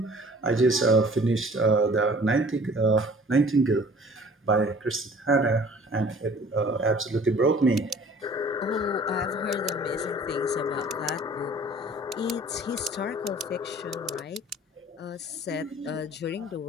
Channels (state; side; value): normal; both; correlation 0.50